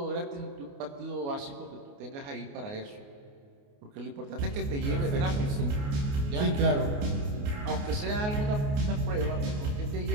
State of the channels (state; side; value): late; left; 29 ms